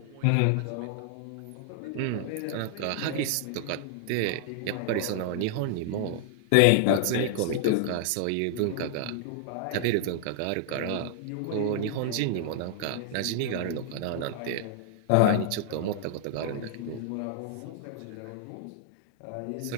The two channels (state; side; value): different; both; correlation -0.01